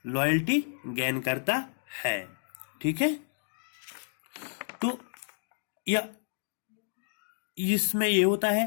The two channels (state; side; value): silent; right; digital silence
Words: लॉयल्टी गेन करता है। ठीक है, तो या इसमें ये होता है